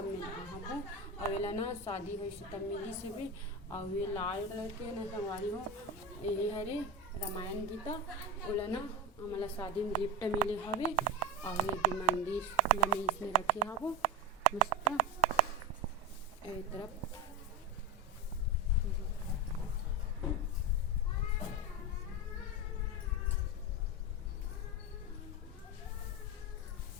में ला हाबो। और एला ना शादी होइस तब मिली से भी। और ये लाल कलर के ना संगवारी हो ये हरे रामायण गीता ओला ना हमारा शादी में गिफ्ट मिले हवे। और ये मंदिर ला में इसमें रखे हाबो मस्त ए तरफ।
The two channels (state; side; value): normal; both; correlation 0.17